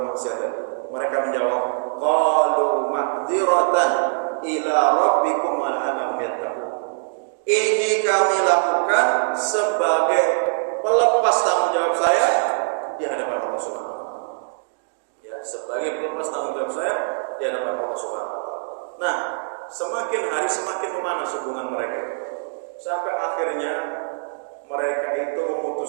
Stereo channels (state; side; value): silent; left; digital silence